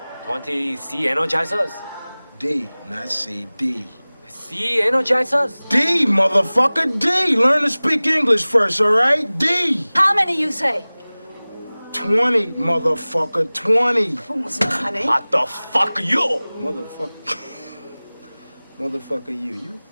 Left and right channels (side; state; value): both; inverted; correlation -0.99